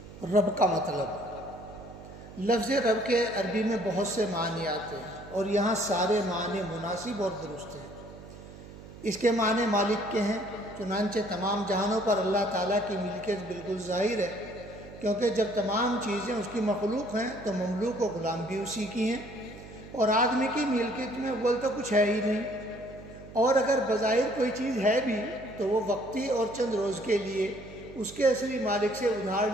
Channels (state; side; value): noise; right; hum, 16 dB below the sound